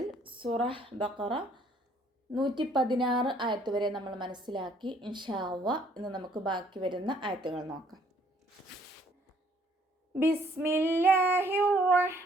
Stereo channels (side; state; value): both; normal; correlation 0.63